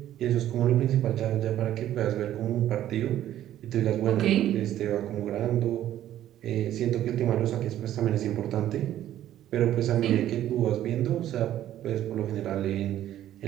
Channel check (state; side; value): quieter; left; 12.3 dB